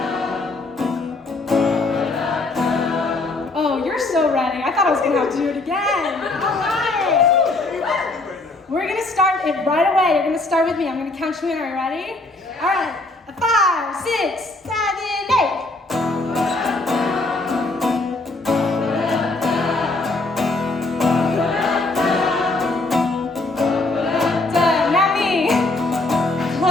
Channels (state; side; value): quieter; right; 3.1 dB